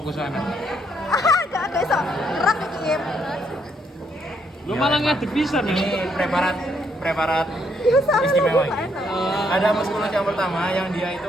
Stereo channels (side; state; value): both; normal; correlation 0.73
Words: sana. Gak ada iso. Rak iki. Lu malah ngadep bisa nih. Ini preparat istimewa ini. Ada musculus yang pertama yang dia